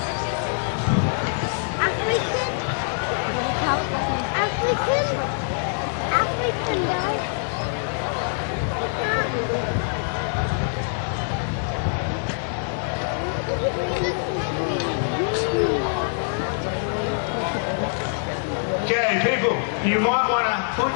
African guy. Okay, people, you might want to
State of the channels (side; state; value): right; silent; digital silence